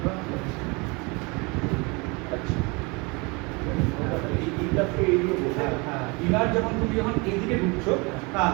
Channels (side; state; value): left; quieter; 28.2 dB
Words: ইনার যখন তুমি যখন এইদিকে ঢুকছো, হ্যাঁ